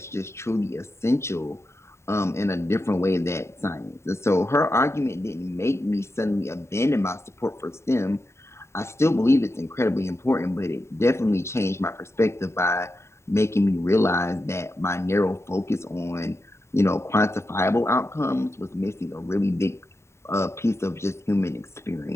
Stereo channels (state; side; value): late; right; 0.13 ms